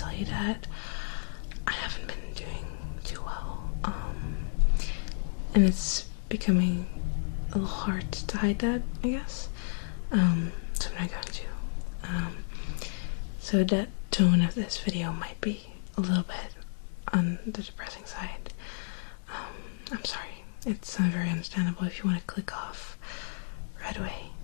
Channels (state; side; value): silent; right; digital silence